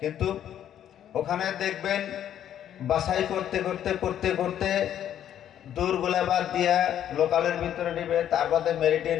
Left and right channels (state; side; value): quieter; right; 10.5 dB